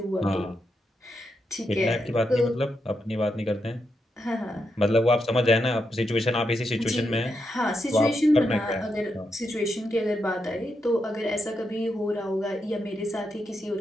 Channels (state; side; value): normal; both; correlation 0.84